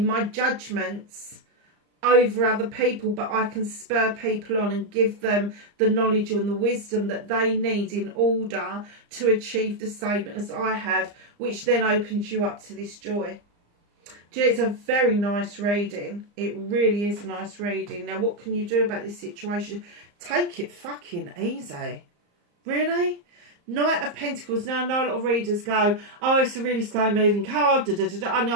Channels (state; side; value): late; left; 34 ms